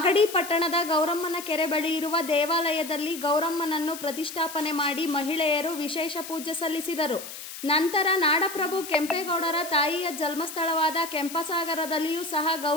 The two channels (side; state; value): left; noise; hiss, 11 dB below the sound